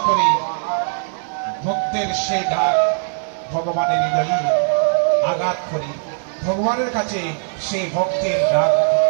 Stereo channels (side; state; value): left; silent; digital silence